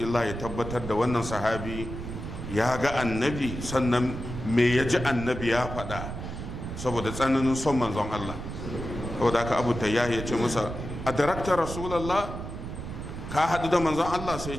ya tabbatar da wannan sahabi ya ga annabi, sannan me ya ji annabi ya faɗa, saboda tsananin son manzon Allah. saboda haka abu tayyahi ya ce masa, a darakta rasulallah, ka haɗu da manzon Allah? sai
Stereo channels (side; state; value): right; noise; rumble, 7 dB below the sound